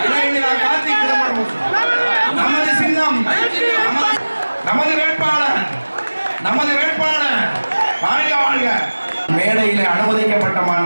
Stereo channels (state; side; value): inverted; both; correlation -1.00